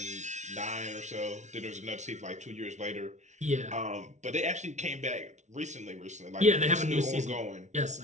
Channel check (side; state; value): left; late; 0.34 ms